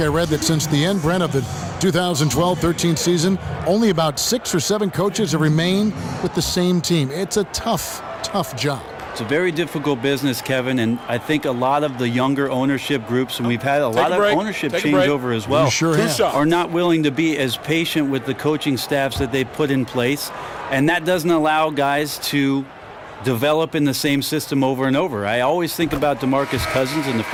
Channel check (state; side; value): identical; both; correlation 1.00